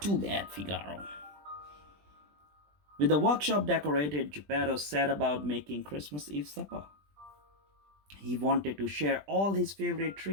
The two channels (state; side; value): late; left; 20 ms